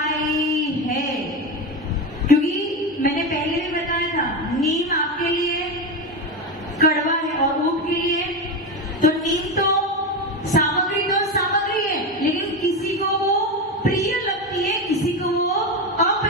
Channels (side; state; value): both; normal; correlation 0.16